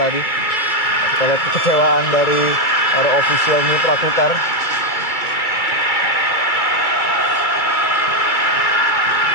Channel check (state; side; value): late; right; 2.3 ms